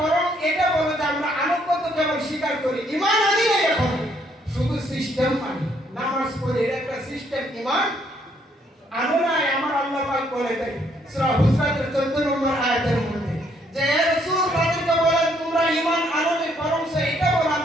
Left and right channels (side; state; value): both; normal; correlation 0.69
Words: বরং এটা বলো যে আমরা আনুগত্য কেবল স্বীকার করি, ঈমান আনি নাই, এখন শুধু সিস্টেম মানি, নামাজ পড়ি, এটা একটা সিস্টেম, ঈমান আনো নাই। আমার আল্লাহ পাক বলে দেয় সূরা হুজরাতের 14 নম্বর আয়াতের মধ্যে যে হে রাসূল তাদেরকে বলেন তোমরা ঈমান আনোনি, বরং এটা বলো